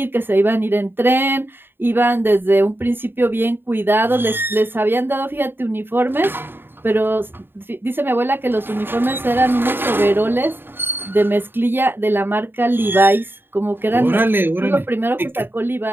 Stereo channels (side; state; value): left; late; 0.10 ms